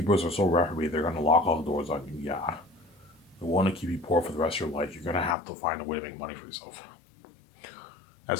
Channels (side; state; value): right; drops out; at 5.4 s